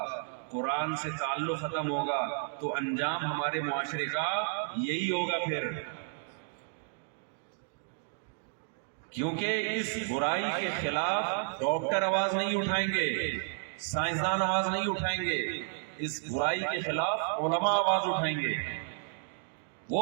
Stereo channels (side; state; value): left; silent; digital silence